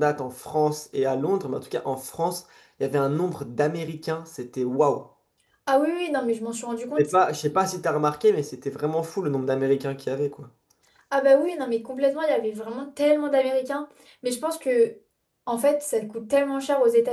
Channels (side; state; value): both; identical; correlation 1.00